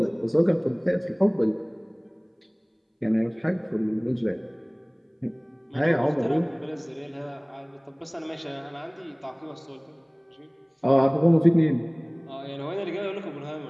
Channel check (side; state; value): both; identical; correlation 1.00